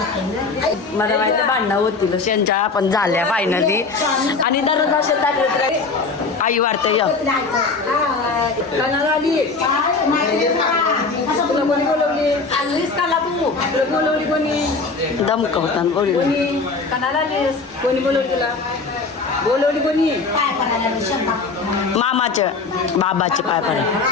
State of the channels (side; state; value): right; quieter; 4.2 dB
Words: माहिती भांडणं होतील शेंच्या पण झाल्या फायनली आणि दररोज असे टाकले तर आई वाढते या तुला कोणी बोलवली आणलीस काला तू तुला बोलवली कोणी दमकवताना बोल कणाला आलीस कोणी बोलवली तुला बोलवली कोणी मामाचे बाबाचे पाय पडे